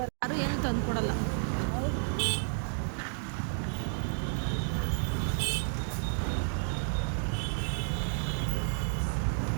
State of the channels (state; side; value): silent; left; 57 dB below the other